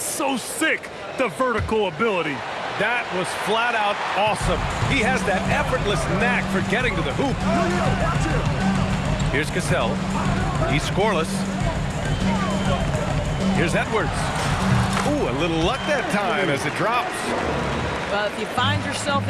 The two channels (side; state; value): both; identical; correlation 1.00